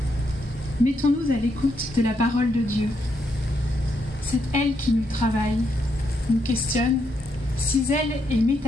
Mettons-nous à l'écoute de la parole de Dieu. C'est elle qui nous travaille, nous questionne, cisèle et met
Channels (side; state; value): both; normal; correlation 0.78